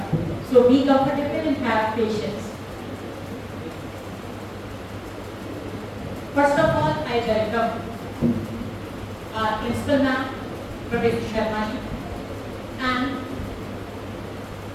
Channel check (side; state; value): both; identical; correlation 1.00